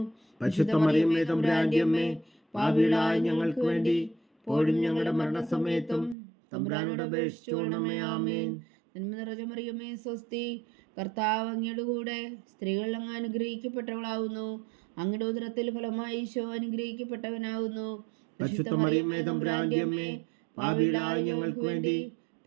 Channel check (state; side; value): drops out; left; at 6.2 s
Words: പരിശുദ്ധ മറിയമേ തമ്പുരാന്റെ അമ്മേ, പാപികളായ ഞങ്ങൾക്ക് വേണ്ടി ഇപ്പോഴും ഞങ്ങളുടെ മരണസമയത്തും തമ്പുരാനോട് അപേക്ഷിച്ചുകൊള്ളണമേ. ആമേൻ. നന്മ നിറഞ്ഞ മറിയമേ സ്വസ്തി, കർത്താവ് അങ്ങയുടെ കൂടെ സ്ത്രീകൾ അങ്ങ് അനുഗ്രഹിക്കപ്പെട്ടവളാകുന്നു. അങ്ങയുടെ ഉദരത്തിൽ ഫലമായി ഈശോ അനുഗ്രഹിക്കപ്പെട്ടവനാകുന്നു. പരിശുദ്ധ മറിയമേ തമ്പുരാന്റെ അമ്മേ, പാപികളായ ഞങ്ങൾക്ക് വേണ്ടി